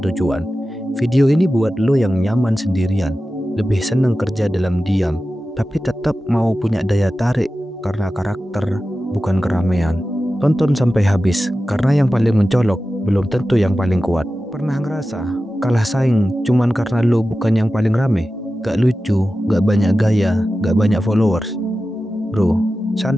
Video ini buat lo yang nyaman sendirian, lebih seneng kerja dalam diam, tapi tetap mau punya daya tarik karena karakter, bukan keramaian. Tonton sampai habis, karena yang paling mencolok belum tentu yang paling kuat. Pernah ngerasa kalah saing cuman karena lo bukan yang paling rame? Gak lucu, gak banyak gaya, gak banyak followers. Bro,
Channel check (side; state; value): both; normal; correlation 0.94